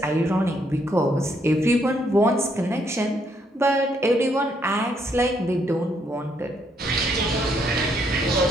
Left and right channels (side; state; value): both; normal; correlation 0.73